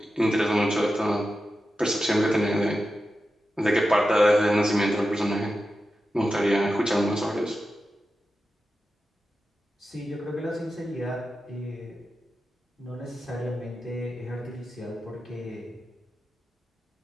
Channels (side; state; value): both; normal; correlation 0.91